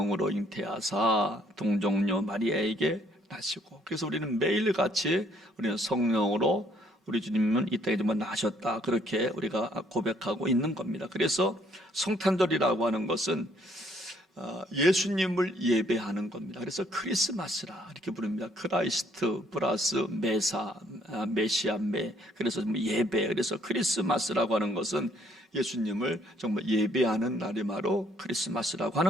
잉태하사 동정녀 마리아에게 나시고. 그래서 우리는 매일같이 우리는 성령으로 우리 주님은 이 땅에 정말 나셨다, 그렇게 우리가 고백하고 있는 겁니다. 그래서 성탄절이라고 하는 것은 예수님을 예배하는 겁니다. 그래서 크리스마스라 이렇게 부릅니다. 크라이스트 플러스 메시아, 그래서 예배. 그래서 크리스마스라고 하는 것은 예수님을 정말 예배하는 날이 바로 크리스마스라고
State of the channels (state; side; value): normal; both; correlation 0.65